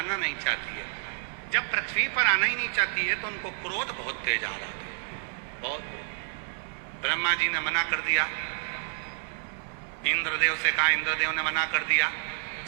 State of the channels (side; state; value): left; silent; 58 dB below the other